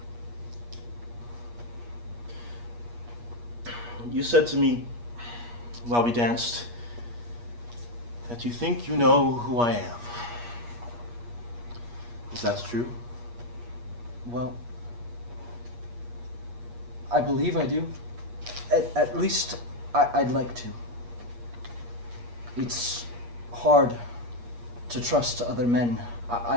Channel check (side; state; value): left; late; 8.4 ms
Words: You said to me while we danced that you think you know who I am. Is that true? Well, I believe I do. At least I'd like to. It's hard to trust other men.